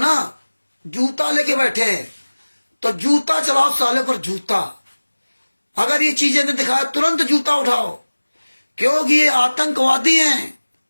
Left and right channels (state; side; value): inverted; both; correlation -1.00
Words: जूता लेके बैठे हैं, तो जूता चलाओ साले पर जूता। अगर ये चीजें नहीं दिखाए, तुरंत जूता उठाओ, क्योंकि ये आतंकवादी हैं,